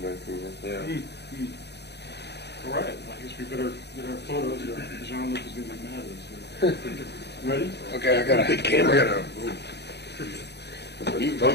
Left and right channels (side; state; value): right; late; 0.49 ms